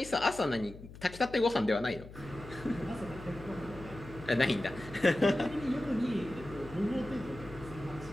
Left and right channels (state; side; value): noise; left; hum, 15 dB below the sound